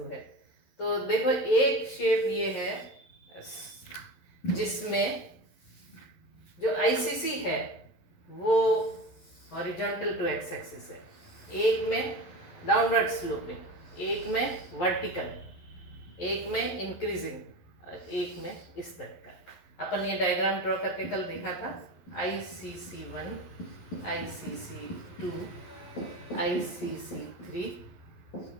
है। तो देखो, एक शेप ये है जिसमें जो आईसीसी है वो हॉरिजॉन्टल टू एक्स एक्सिस है, एक में डाउनवर्ड स्लोपिंग, एक में वर्टिकल, एक में इंक्रीजिंग, एक में इस तरह का। अपन ये डायग्राम ड्रॉ करके कल देखा था। ICC1, ICC2, ICC3,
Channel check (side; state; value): right; late; 11 ms